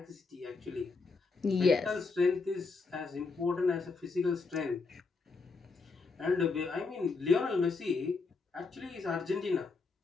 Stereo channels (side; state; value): right; quieter; 4.3 dB